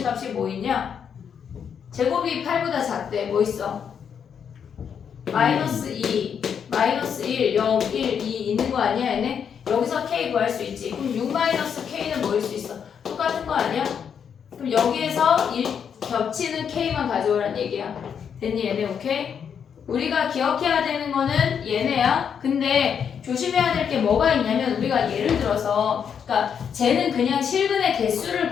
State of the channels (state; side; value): quieter; right; 7.5 dB